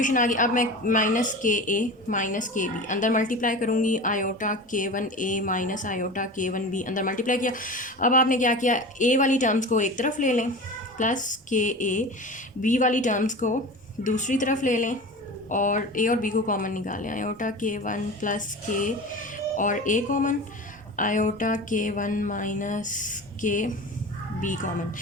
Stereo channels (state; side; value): normal; both; correlation 0.32